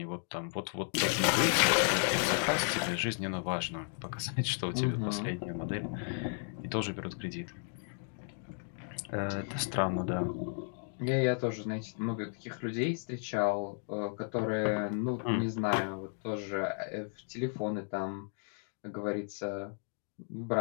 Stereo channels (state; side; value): silent; right; 55 dB below the other